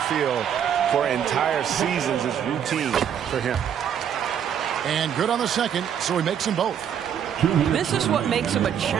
field for entire seasons is routine for him. And good on the second, so he makes them both. This is what makes him a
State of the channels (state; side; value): quieter; left; 8.8 dB